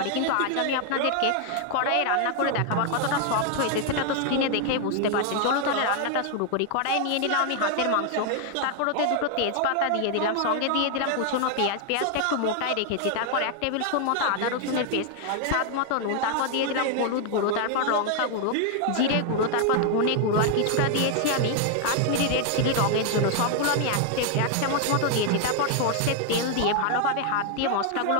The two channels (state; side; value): different; both; correlation 0.00